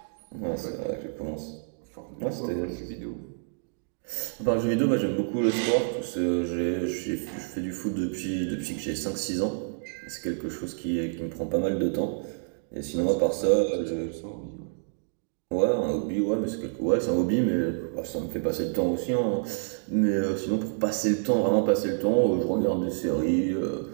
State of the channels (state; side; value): silent; left; digital silence